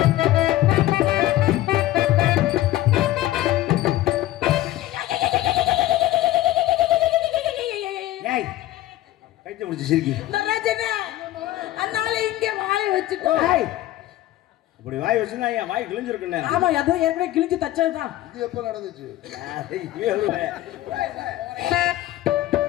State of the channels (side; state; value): right; quieter; 15.2 dB